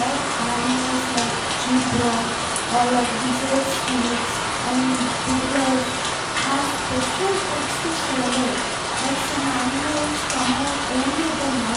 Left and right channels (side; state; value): both; identical; correlation 1.00